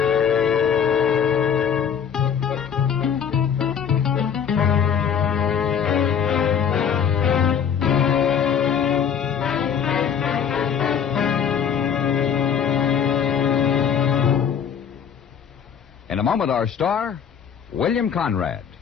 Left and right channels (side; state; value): right; quieter; 7.6 dB